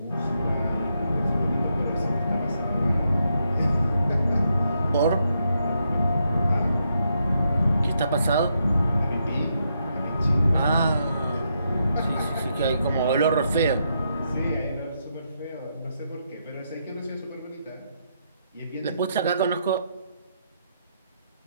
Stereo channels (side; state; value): both; inverted; correlation -0.79